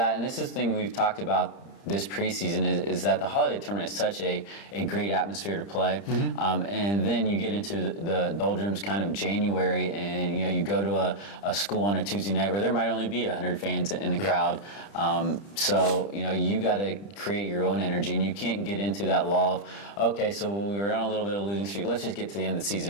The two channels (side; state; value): right; late; 30 ms